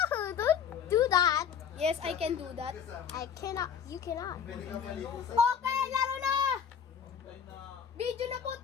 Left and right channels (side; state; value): right; quieter; 7.7 dB